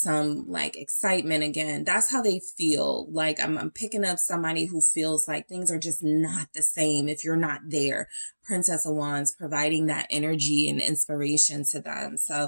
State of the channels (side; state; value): both; inverted; correlation -1.00